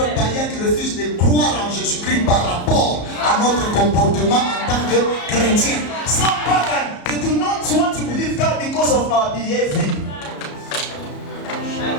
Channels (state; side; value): late; right; 34 ms